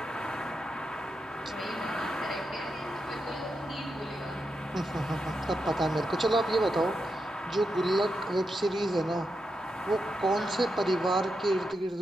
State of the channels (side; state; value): both; normal; correlation 0.86